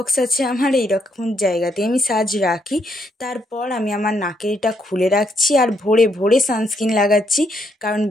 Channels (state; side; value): normal; both; correlation 0.74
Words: আছে আমার, এইরকম জায়গাতে আমি সাজ রাখি। তারপর আমি আমার নাকেরটা খুলে রাখছি আর ভোরে ভোরে সানস্ক্রিন লাগাচ্ছি, কারণ